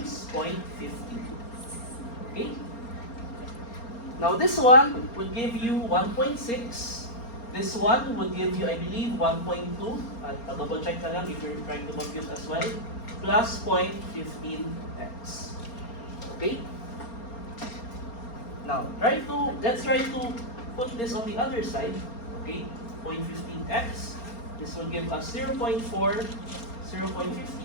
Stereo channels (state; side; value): late; right; 4.3 ms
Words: 0.15. Okay? Now this one would give you 1.6. This one would give you, I believe, 1.2. I'll double check na lang if you're trying to compute as well. Plus 0.15x. Okay? Now, let's try to put this on the other side. Okay? 0.15x. This will give us